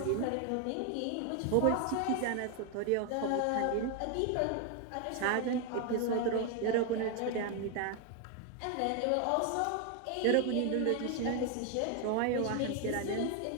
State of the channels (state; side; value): different; both; correlation 0.01